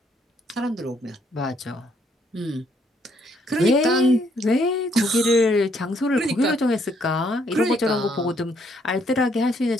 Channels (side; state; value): both; normal; correlation 0.69